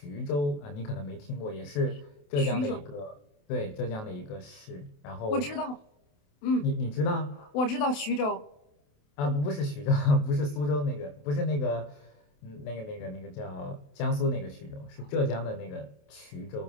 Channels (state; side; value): late; right; 28 ms